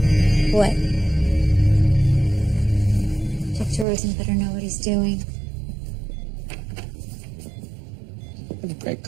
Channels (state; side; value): drops out; left; at 3.9 s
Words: What? Dr. Rosen better know what he's doing. I have great